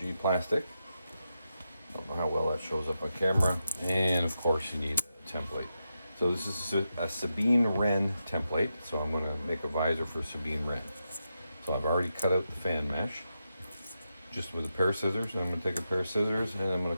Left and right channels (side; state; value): both; inverted; correlation -0.86